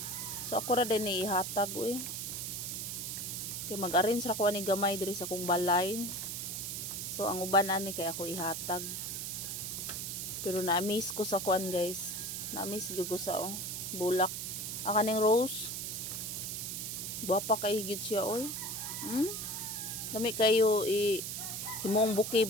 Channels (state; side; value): noise; right; hiss, 4 dB below the sound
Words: So ako ra din ni ihatag eh. Kay mag-arrange ra ko ani gamay diri sa kong balay. So ang uban ani kay ako ihatag. Pero na-amaze ko sa kuan guys. Na-amaze gyud ko sa bulak. Akaning rose. Guwapa kayo gyud siya oy. Dami kayo himong bouquet